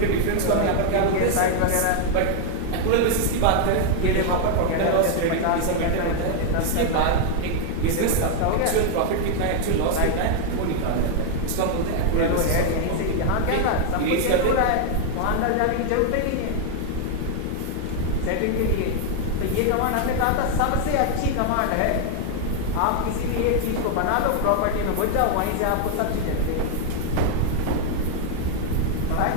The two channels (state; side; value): different; both; correlation 0.00